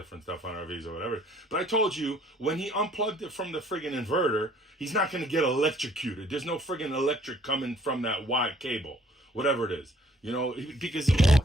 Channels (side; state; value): both; normal; correlation 0.59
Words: stuff on RVs or whatever. But I told you when he unplugged it from the friggin' inverter, he's not going to get electrocuted. There's no friggin' electric coming from that wide cable, whatever it is. Because